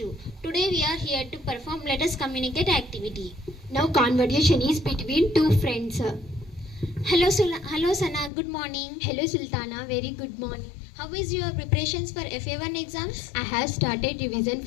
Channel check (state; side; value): drops out; right; at 8.3 s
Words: Today we are here to perform Let Us Communicate activity. Now conversation is between two friends. Hello Sana, good morning. Hello Sultana, very good morning. How is your preparations for FA1 exams? I have started revision